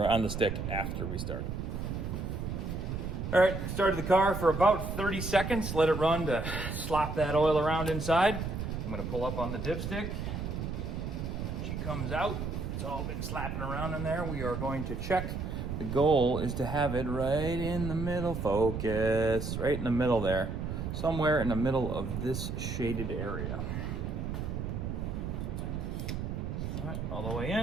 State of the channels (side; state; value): right; noise; rumble, 4 dB below the sound